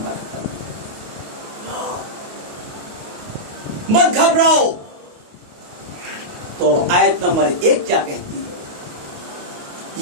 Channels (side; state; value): left; late; 28 ms